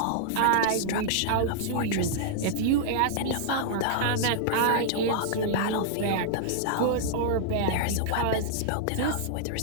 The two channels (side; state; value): both; different; correlation -0.01